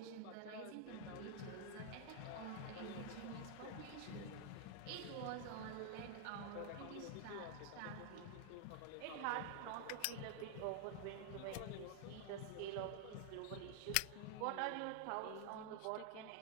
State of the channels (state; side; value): different; both; correlation 0.00